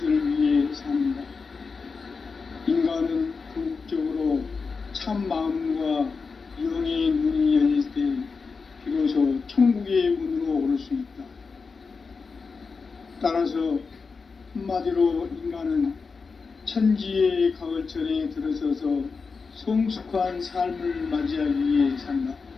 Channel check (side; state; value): right; quieter; 4.8 dB